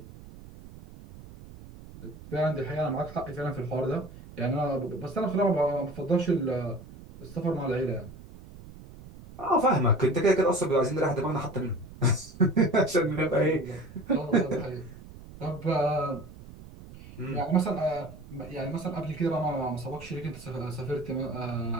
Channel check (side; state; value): right; noise; rumble, 17 dB below the sound